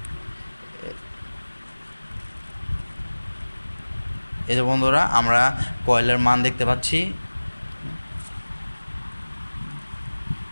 এই যে বন্ধুরা আমরা কয়েলের মান দেখতে পাচ্ছি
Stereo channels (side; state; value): both; inverted; correlation -1.00